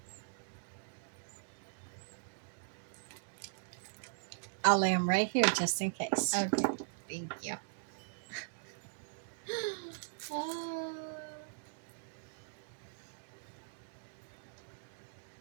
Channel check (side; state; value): left; silent; digital silence